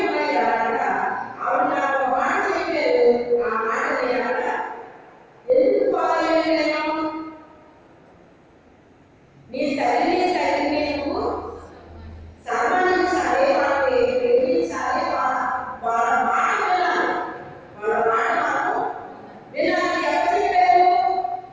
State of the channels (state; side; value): identical; both; correlation 1.00